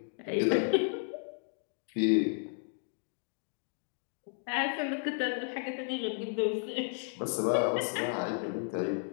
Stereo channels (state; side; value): silent; right; 55 dB below the other